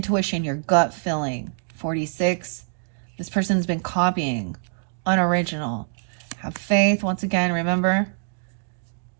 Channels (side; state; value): left; silent; 62 dB below the other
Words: your gut feeling. 46. This person's been copying. Unoriginal. Have faith. Once again, remember,